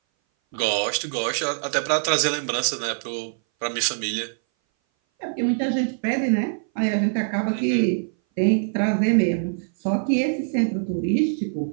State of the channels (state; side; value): silent; left; 59 dB below the other